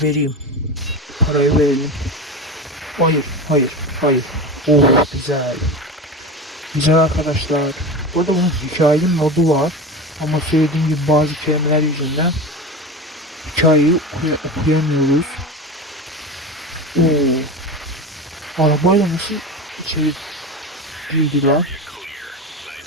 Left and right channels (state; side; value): normal; both; correlation 0.27